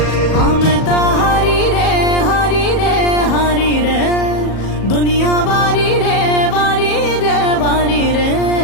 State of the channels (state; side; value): late; right; 37 ms